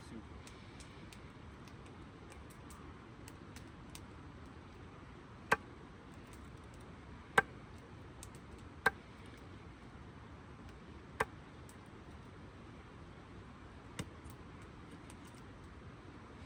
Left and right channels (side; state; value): both; identical; correlation 1.00